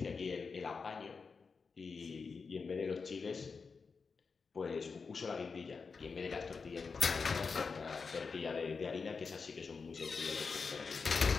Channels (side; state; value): right; quieter; 4.9 dB